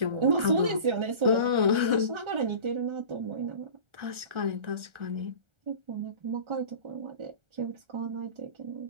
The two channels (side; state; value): left; late; 1.4 ms